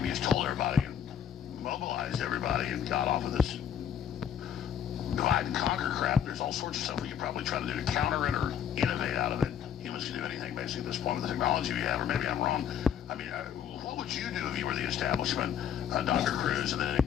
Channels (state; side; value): quieter; right; 8.9 dB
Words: we just told everybody and mobilized everybody and got off of this divide and conquer crap. There's all sorts of stuff we could probably try to do to counter it or innovate out of it. Humans can do anything, basically, at this point with the technology we have, or maybe I'm wrong. I mean, what would you do if you were the establishment, Dr. Cruz? And then in